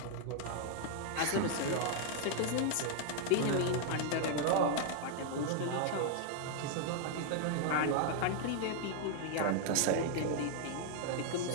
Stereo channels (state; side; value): different; both; correlation 0.00